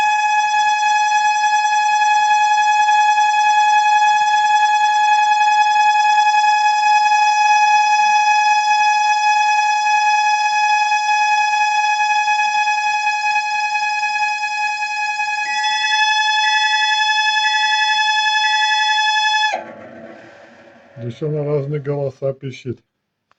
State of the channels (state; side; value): identical; both; correlation 1.00